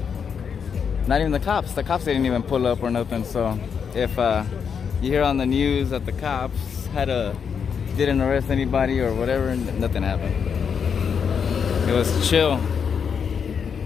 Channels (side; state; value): right; quieter; 6.8 dB